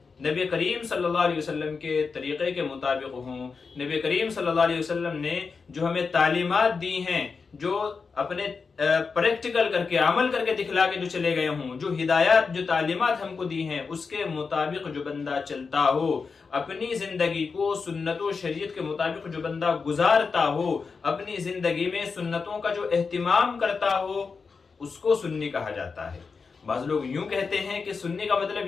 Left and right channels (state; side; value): quieter; right; 5.0 dB